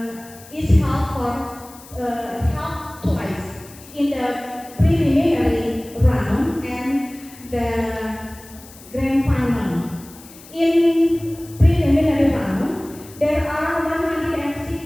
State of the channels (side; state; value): left; noise; hiss, 20 dB below the sound